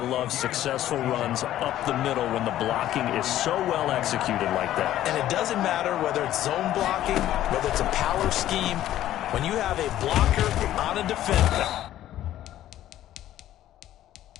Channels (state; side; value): quieter; right; 12.9 dB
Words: successful runs up the middle when the blocking is so well executed like that. And it doesn't matter whether it's zone blocking, whether it's a power scheme. When you have a blocker on a defender.